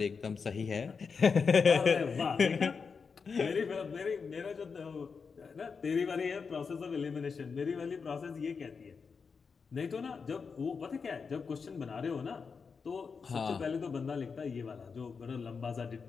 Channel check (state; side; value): quieter; right; 5.4 dB